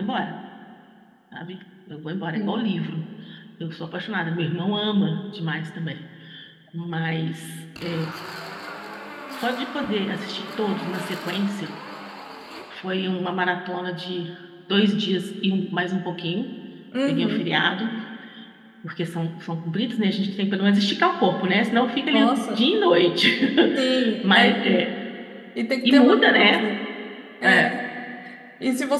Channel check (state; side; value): identical; both; correlation 1.00